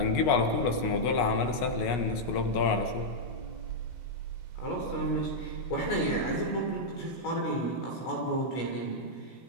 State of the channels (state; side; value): late; right; 16 ms